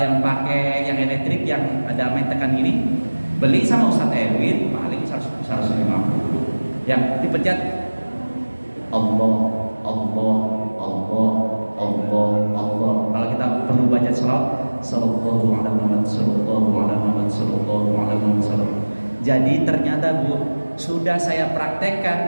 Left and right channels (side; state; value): both; inverted; correlation -1.00